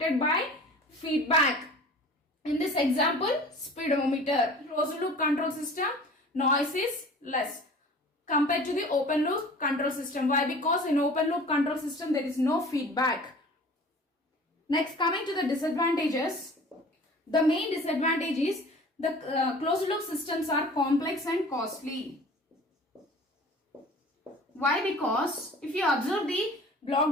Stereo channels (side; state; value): both; normal; correlation 0.44